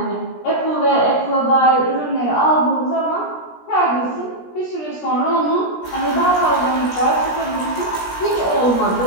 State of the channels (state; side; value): late; right; 17 ms